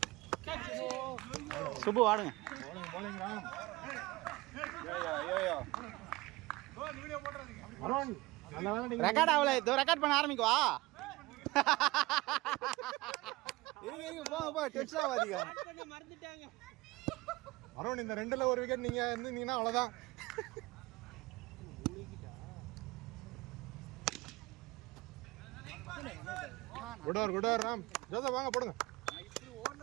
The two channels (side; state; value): left; quieter; 20.8 dB